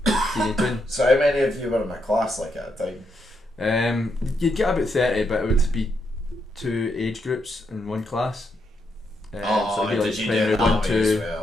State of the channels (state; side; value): normal; both; correlation 0.80